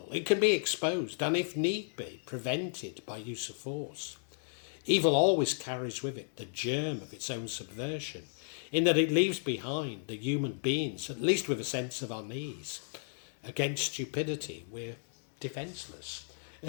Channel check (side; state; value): right; silent; digital silence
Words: It can be exposed and, if need be, prevented by use of force. Evil always carries with it the germ of its own subversion, in that it leaves behind the human beings, at least with a sense of unease. Against stupidity, we're defenceless.